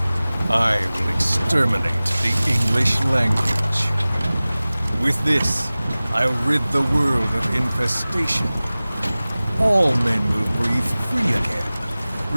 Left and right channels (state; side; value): inverted; both; correlation -0.98